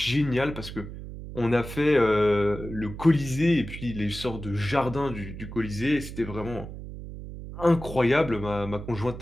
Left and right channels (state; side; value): noise; right; hum, 11 dB below the sound